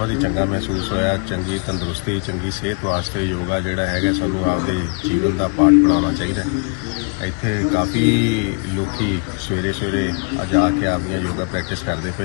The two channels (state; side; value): quieter; right; 34.6 dB